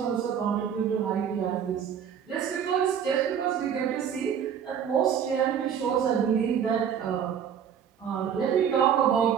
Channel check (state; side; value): quieter; left; 8.2 dB